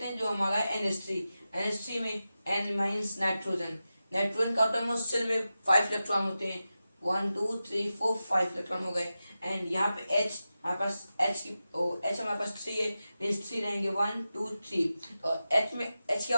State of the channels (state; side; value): inverted; both; correlation -0.93